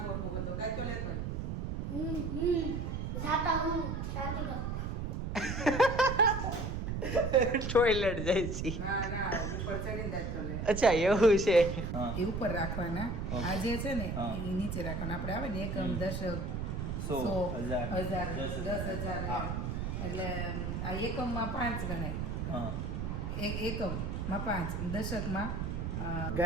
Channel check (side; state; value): right; noise; rumble, 3 dB below the sound